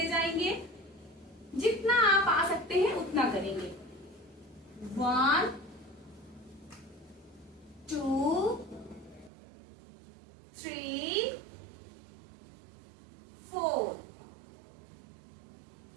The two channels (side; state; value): left; drops out; at 9.3 s